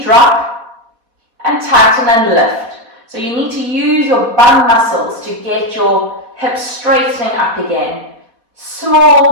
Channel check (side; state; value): left; late; 4.1 ms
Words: drop and tighten and lift. So you need to use your bum muscles to get your hips straightening up again.